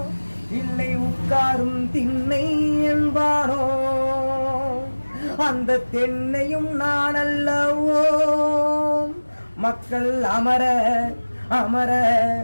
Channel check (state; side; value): inverted; both; correlation -1.00